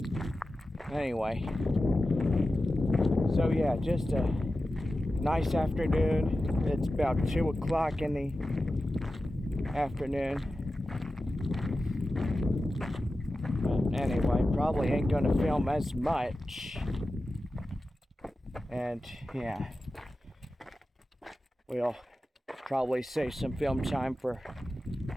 Anyway, so yeah, just a nice afternoon. It's about 2 o'clock in the afternoon. But anyway, probably ain't gonna film as much. And yeah, we'll probably save some film time for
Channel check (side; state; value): both; normal; correlation 0.93